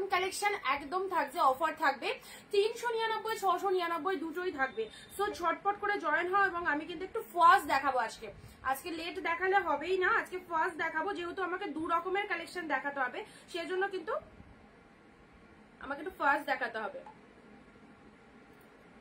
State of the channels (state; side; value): identical; both; correlation 1.00